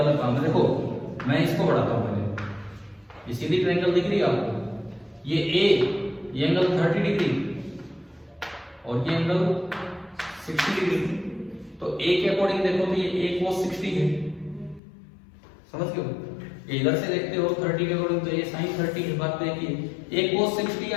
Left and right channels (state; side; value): drops out; right; at 14.8 s